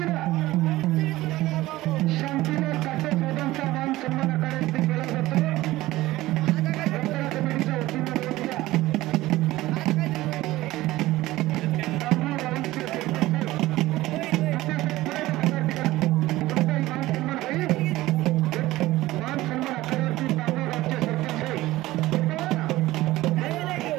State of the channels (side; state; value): left; quieter; 17.4 dB